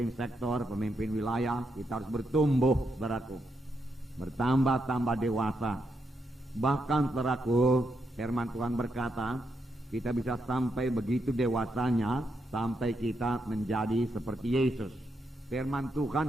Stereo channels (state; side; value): normal; both; correlation 0.81